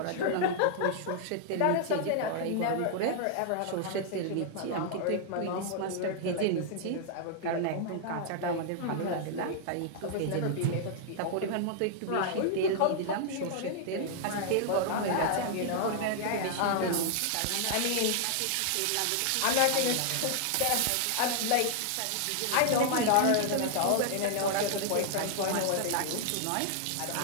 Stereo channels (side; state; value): both; different; correlation -0.01